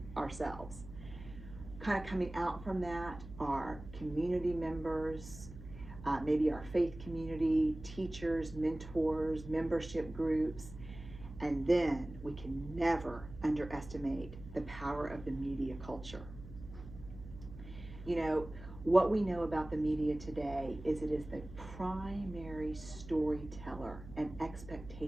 ourselves. Kind of coming out from that are community members, maybe our faith community, teachers, mentors, membership groups. And then we can never underestimate the power of the media culture. What we know about the media today is it is the primary storyteller and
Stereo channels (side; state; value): right; noise; hum, 14 dB below the sound